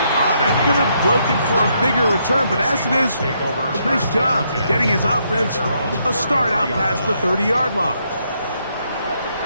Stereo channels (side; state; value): both; inverted; correlation -0.75